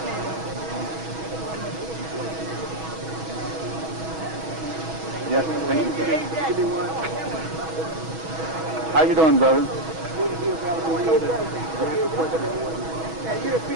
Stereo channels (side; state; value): left; late; 6.2 ms